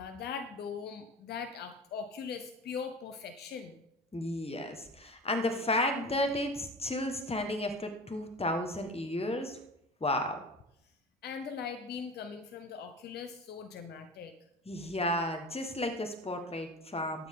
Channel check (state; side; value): normal; both; correlation 0.35